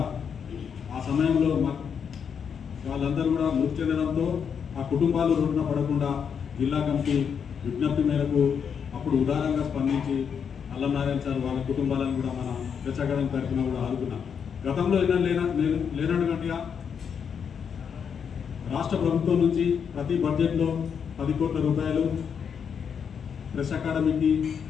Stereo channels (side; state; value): right; quieter; 7.1 dB